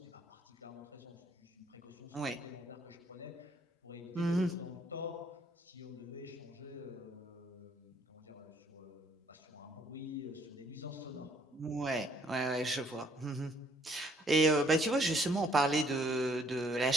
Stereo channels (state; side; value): normal; both; correlation 0.64